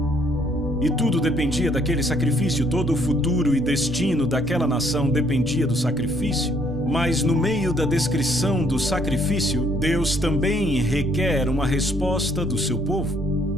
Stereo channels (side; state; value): both; normal; correlation 0.65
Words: E tudo dependia daquele sacrifício, todo o futuro e destino daquela nação dependia do sacrifício. Mas no meio da descrição do sacrifício, Deus também requer uma resposta do seu